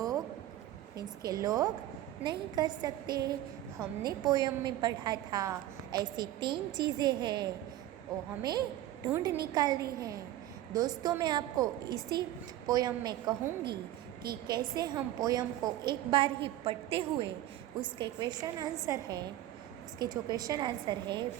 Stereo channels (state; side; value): quieter; left; 13.9 dB